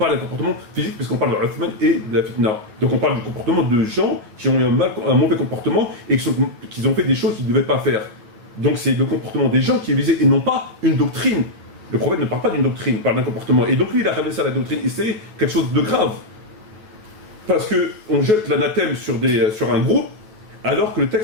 d'un comportement physique puisqu'on parle de Uthman et de la fitna. Donc on parle du comportement de gens qui ont eu un mauvais comportement et qui ont fait des choses qu'ils ne devaient pas faire. Donc c'est le comportement des gens qui est visé et non pas une doctrine. Le prophète ne parle pas d'une doctrine, il parle d'un comportement. Et donc lui, il a ramené ça à la doctrine. Et c'est quelque chose de grave. Parce qu'on jette l'anathème sur un groupe, alors que le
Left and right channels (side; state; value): left; late; 9.4 ms